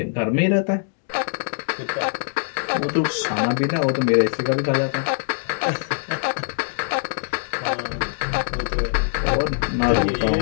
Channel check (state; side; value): silent; right; digital silence